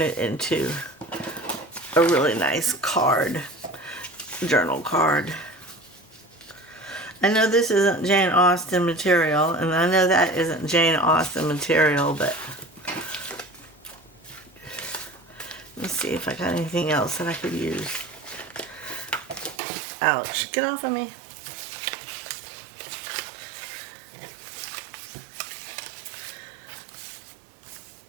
it into a really nice card, journal card. I know this isn't Jane Austen material, and I know that isn't Jane Austen material, but let's see if I got anything else that I could use. Ouch, get off of me.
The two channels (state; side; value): drops out; left; at 19.6 s